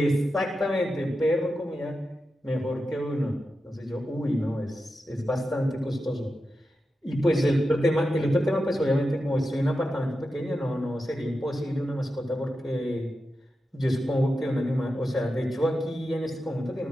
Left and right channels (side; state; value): both; normal; correlation 0.90